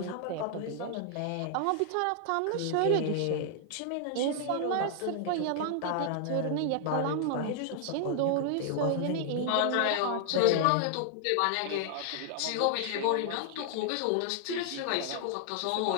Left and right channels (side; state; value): both; different; correlation 0.00